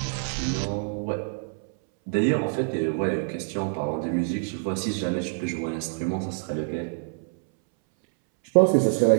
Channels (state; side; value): silent; left; 61 dB below the other